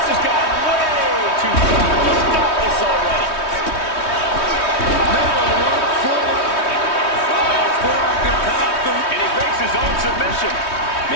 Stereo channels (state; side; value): late; right; 3.2 ms